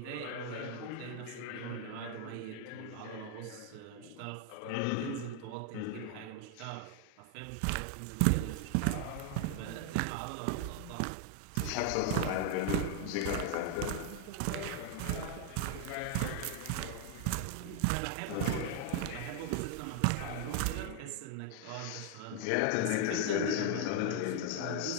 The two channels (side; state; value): both; different; correlation 0.00